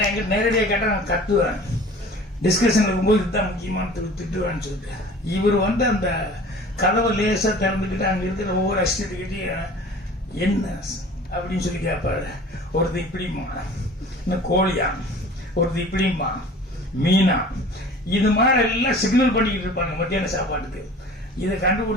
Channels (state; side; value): normal; both; correlation 0.44